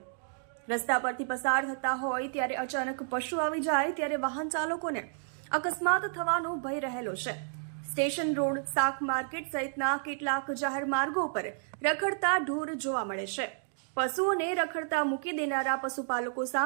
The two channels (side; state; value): left; silent; digital silence